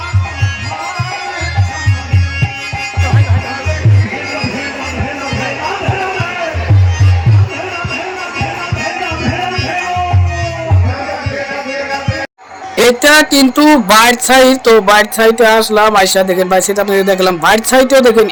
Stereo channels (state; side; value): identical; both; correlation 1.00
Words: এটা কিন্তু বাইট সাইড। তো বাইট সাইডে আসলাম, আইসা দেখেন বাইট সাইড আপনাদের দেখলাম। বাইট সাইডেও দেখেন